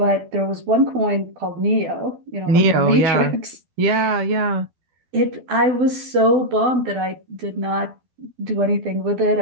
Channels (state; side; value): late; left; 12 ms